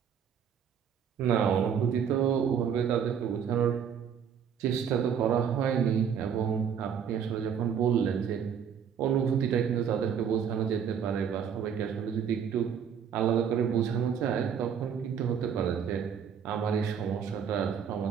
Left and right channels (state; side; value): quieter; left; 7.7 dB